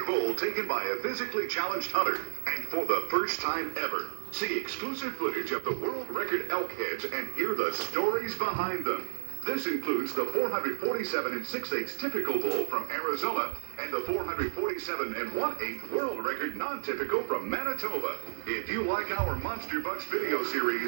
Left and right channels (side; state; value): left; silent; digital silence